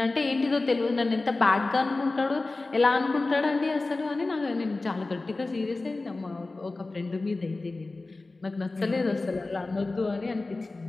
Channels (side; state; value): right; quieter; 3.3 dB